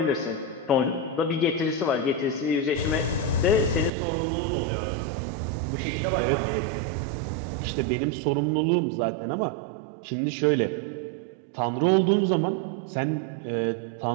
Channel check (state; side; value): drops out; left; at 3.9 s